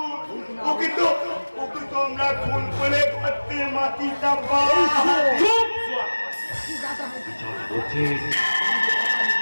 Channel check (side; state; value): both; inverted; correlation -1.00